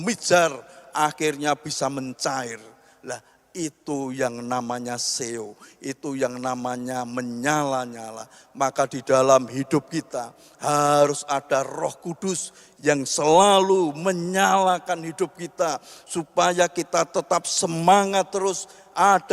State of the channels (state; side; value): identical; both; correlation 1.00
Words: akhirnya bisa mencair. Lah itu yang namanya seo, itu yang namanya menyala-nyala. Maka di dalam hidup kita harus ada Roh Kudus yang selalu menyalakan hidup kita supaya kita tetap semangat terus.